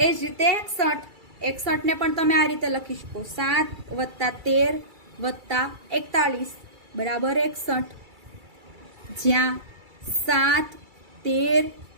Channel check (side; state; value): left; late; 2.3 ms